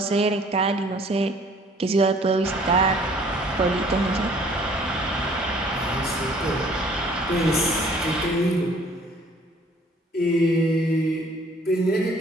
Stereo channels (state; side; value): normal; both; correlation 0.56